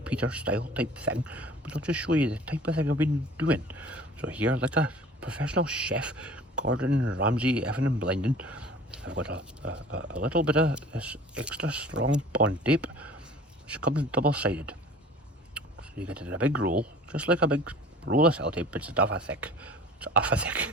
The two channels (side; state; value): both; normal; correlation 0.46